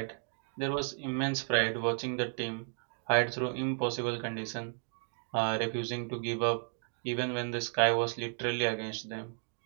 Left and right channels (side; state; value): left; silent; 55 dB below the other